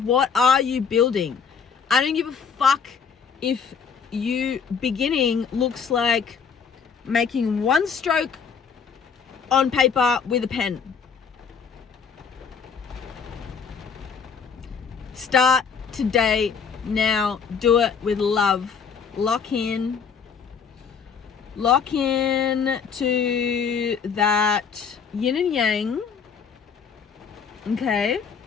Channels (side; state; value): right; quieter; 6.3 dB